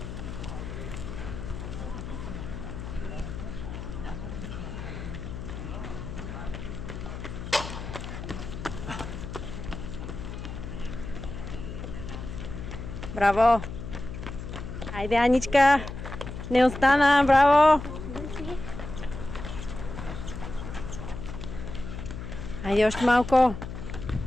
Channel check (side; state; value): left; noise; hum, 8 dB below the sound